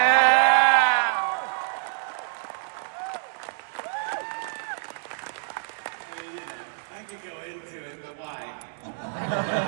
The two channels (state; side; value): silent; left; digital silence